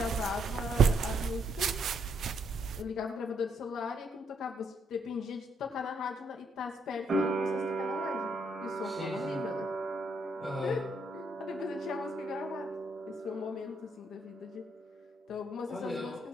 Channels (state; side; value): normal; both; correlation 0.74